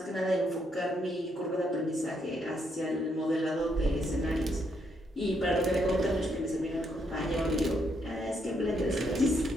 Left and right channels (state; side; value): normal; both; correlation 0.76